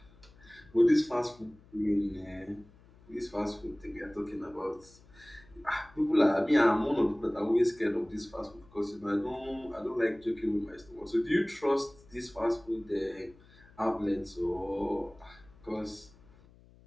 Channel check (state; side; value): noise; left; hum, 25 dB below the sound